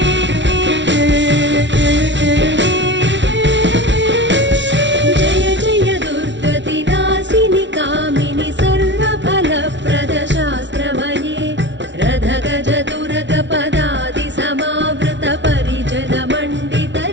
गज दुर्ग पदादि समावृत परिजन मण्डित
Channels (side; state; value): left; late; 0.53 ms